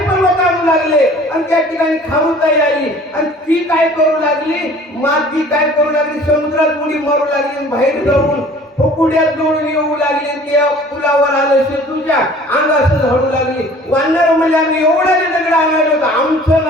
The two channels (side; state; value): both; normal; correlation 0.49